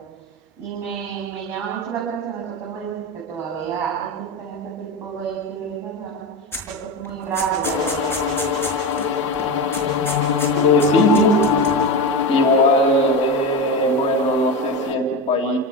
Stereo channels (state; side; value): normal; both; correlation 0.20